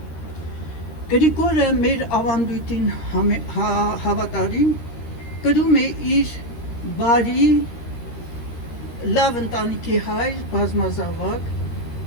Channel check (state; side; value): late; right; 13 ms